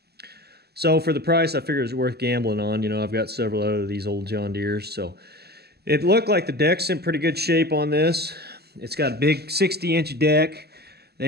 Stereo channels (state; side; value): late; left; 0.47 ms